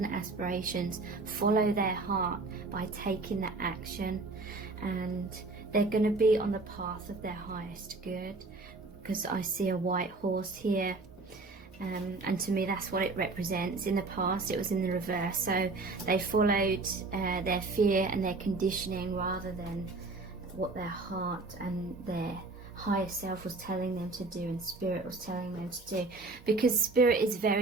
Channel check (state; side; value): quieter; left; 3.5 dB